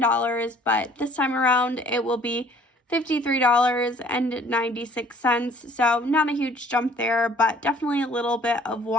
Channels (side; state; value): both; normal; correlation 0.56